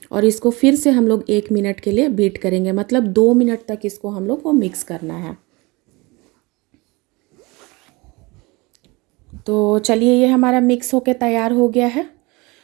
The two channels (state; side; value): quieter; left; 24.7 dB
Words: और इसको फिर से हम लोग 1 मिनट के लिए बीट करेंगे, मतलब 2 मिनट तक इसको हम लोग को मिक्स करना है। तो चलिए ये हमारा मिक्स होके तैयार हो गया है।